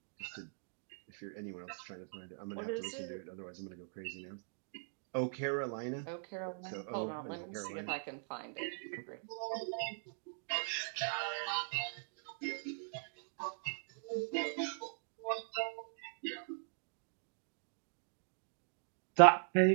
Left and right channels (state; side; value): silent; left; digital silence